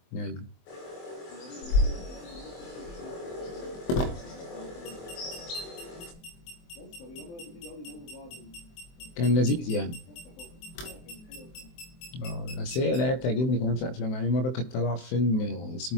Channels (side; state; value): right; late; 23 ms